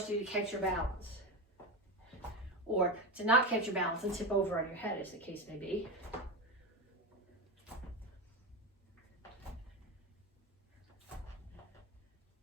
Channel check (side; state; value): both; normal; correlation 0.17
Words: you to catch your balance. Or to not catch your balance and tip over on your head, as the case may be.